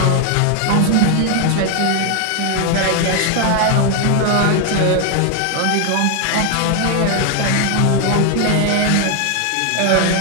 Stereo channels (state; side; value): different; both; correlation 0.00